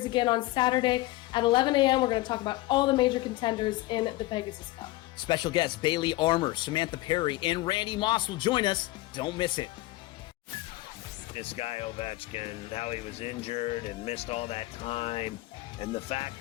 again on Saturday at 11 a.m. We're going to talk about all the major contenders in the Pegasus Cup. Special guests Bailey Armour, Samantha Perry, and Randy Moss will join us. Don't miss it. This guy Ovechkin, how he was injured and missed all that time, and the fact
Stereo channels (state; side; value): quieter; right; 18.7 dB